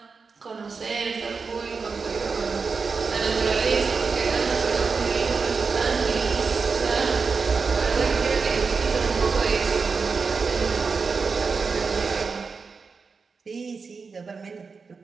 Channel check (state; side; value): quieter; left; 4.9 dB